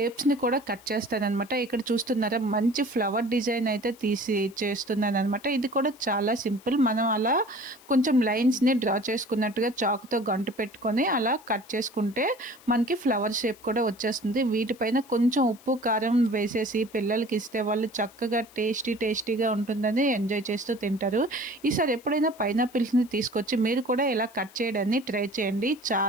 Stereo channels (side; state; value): left; noise; hiss, 25 dB below the sound